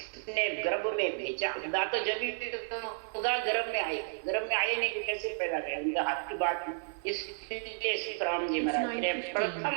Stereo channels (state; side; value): silent; left; 56 dB below the other